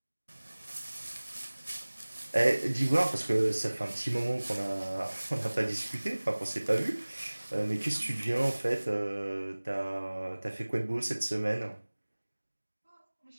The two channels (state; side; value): inverted; both; correlation -1.00